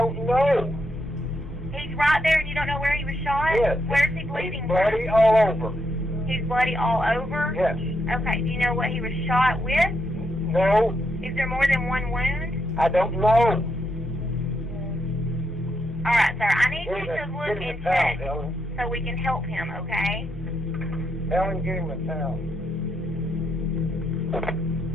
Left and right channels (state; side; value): normal; both; correlation 0.80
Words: know. He's right there and you don't know where he was shot? Yes. Where's he bleeding He's bloody all over. He's bloody all over? Yes. Okay, do you know what he was shot with? No, Is there more than one wound? I don't know. Alright, sir, I need you to look Give him and a towel, check Helen. so we can help him, okay? Helen, give him a towel.